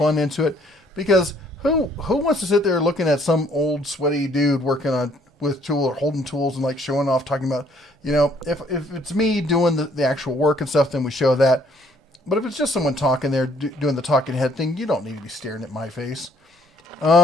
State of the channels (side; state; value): both; normal; correlation 0.63